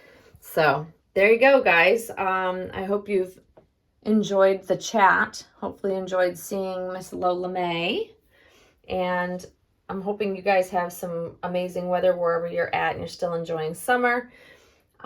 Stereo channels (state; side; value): identical; both; correlation 1.00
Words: So there you go, guys. I hope you've enjoyed the chat. Hopefully enjoyed seeing Miss Lola May, and I'm hoping you guys have some amazing weather wherever you're at and you're still enjoying summer.